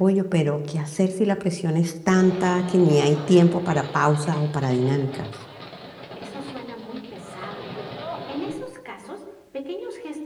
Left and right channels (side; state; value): both; identical; correlation 1.00